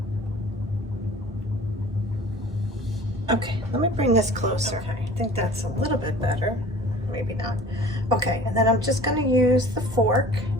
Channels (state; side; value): normal; both; correlation 0.45